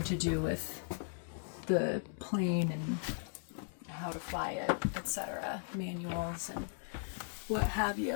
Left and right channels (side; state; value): right; silent; digital silence